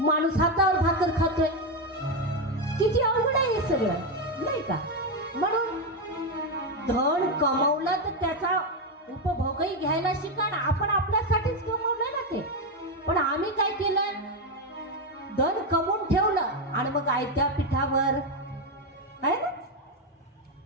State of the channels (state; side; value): normal; both; correlation 0.08